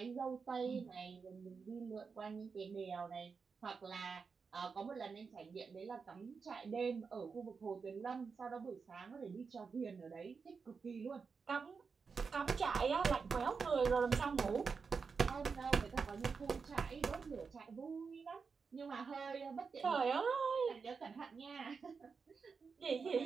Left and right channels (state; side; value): quieter; left; 5.3 dB